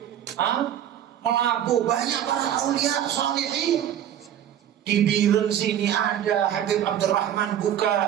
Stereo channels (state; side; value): quieter; left; 10.5 dB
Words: Melabu, banyak para aulia salihin. Di Biren sini ada Habib Abdurrahman